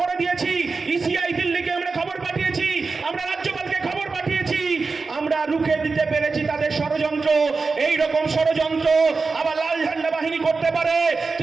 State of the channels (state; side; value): quieter; left; 4.3 dB